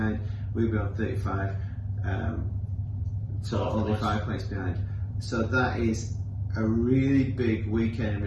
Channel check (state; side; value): identical; both; correlation 1.00